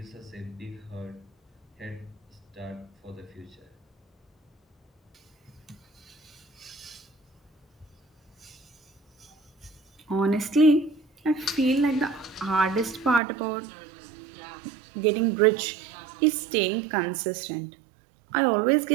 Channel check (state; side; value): drops out; left; at 13.2 s